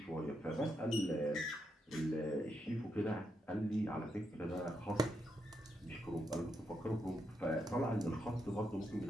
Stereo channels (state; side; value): normal; both; correlation 0.82